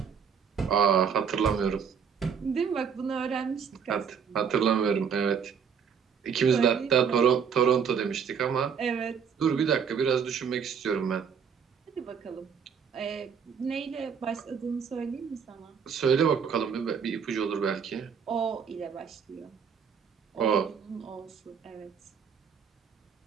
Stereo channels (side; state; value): left; quieter; 6.9 dB